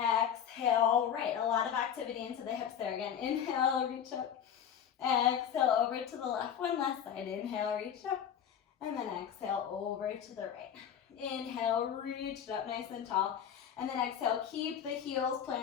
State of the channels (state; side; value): quieter; right; 8.7 dB